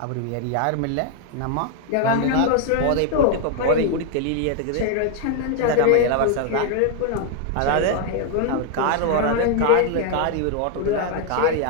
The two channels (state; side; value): different; both; correlation 0.00